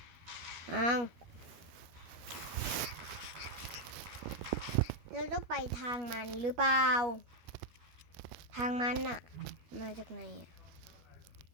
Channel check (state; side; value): late; left; 12 ms